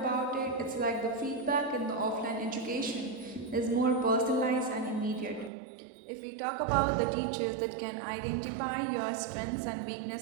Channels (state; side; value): drops out; left; at 5.5 s